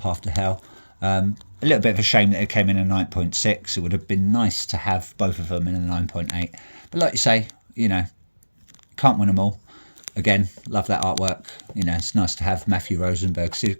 to Hell. A little bit of a shame that it came in a 9.6. It would have been nice to have both of them in a 9.8. But like you say, can't win them all. Again, love that artwork. It's nice to have Matthew Rosenberg's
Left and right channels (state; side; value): inverted; both; correlation -1.00